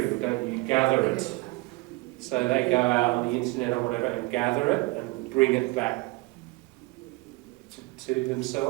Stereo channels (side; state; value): left; quieter; 23.1 dB